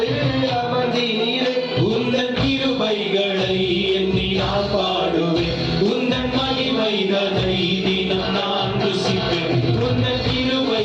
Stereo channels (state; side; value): identical; both; correlation 1.00